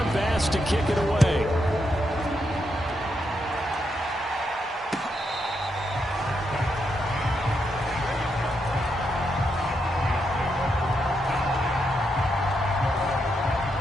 Bass to kick it away.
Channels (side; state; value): both; normal; correlation 0.81